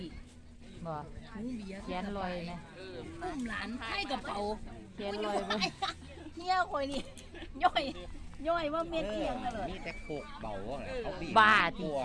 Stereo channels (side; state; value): both; identical; correlation 1.00